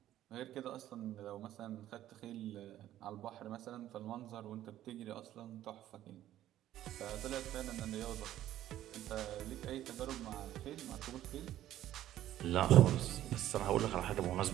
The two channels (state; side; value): quieter; left; 12.9 dB